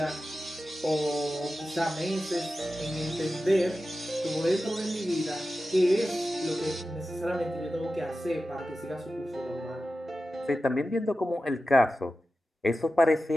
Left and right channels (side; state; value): both; normal; correlation 0.93